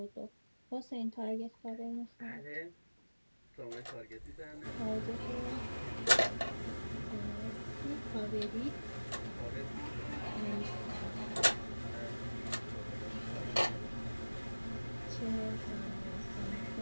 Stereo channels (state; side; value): inverted; both; correlation -1.00